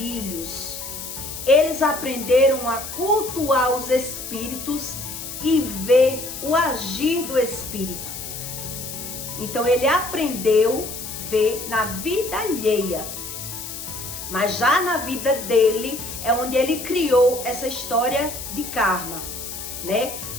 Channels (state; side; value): noise; left; hiss, 8 dB below the sound